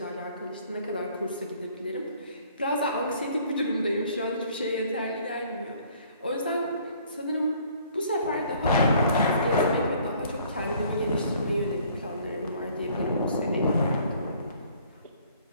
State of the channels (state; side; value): inverted; both; correlation -0.58